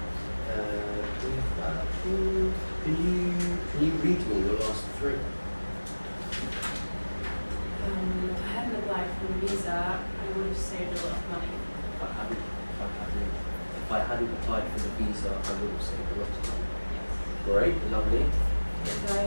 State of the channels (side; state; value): both; inverted; correlation -1.00